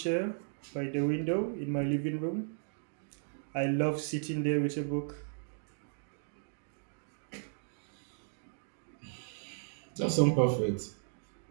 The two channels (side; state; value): left; silent; digital silence